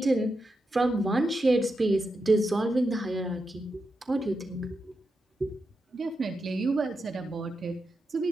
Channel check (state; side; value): normal; both; correlation 0.87